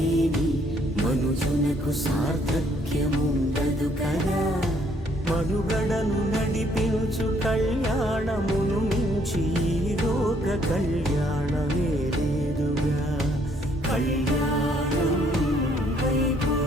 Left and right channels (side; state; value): both; normal; correlation 0.66